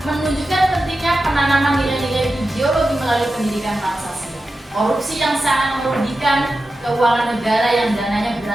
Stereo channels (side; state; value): both; normal; correlation 0.92